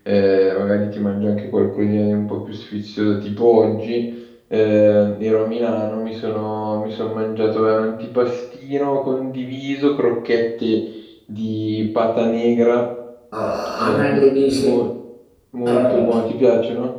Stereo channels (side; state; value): both; identical; correlation 1.00